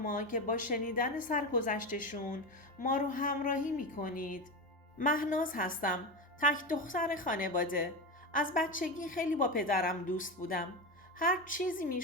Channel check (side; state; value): both; normal; correlation 0.19